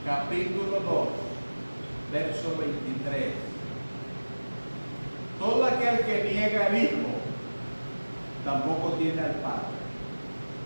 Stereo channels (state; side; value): inverted; both; correlation -1.00